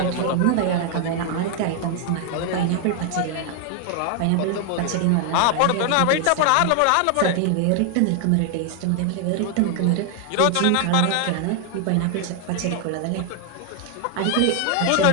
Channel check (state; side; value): different; both; correlation 0.00